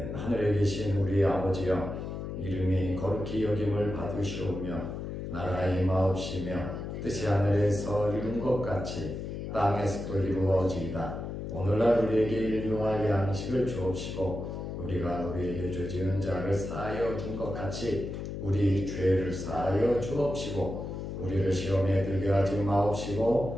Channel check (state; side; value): noise; left; hum, 6 dB below the sound